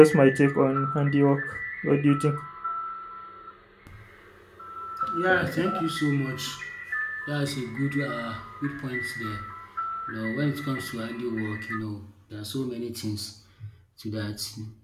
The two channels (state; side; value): identical; both; correlation 1.00